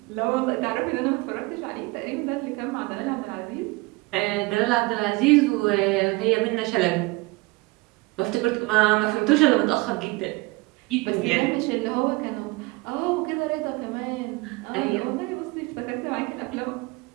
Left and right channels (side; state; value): left; quieter; 24.1 dB